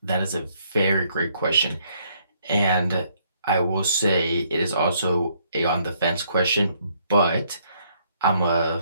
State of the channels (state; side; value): inverted; both; correlation -0.68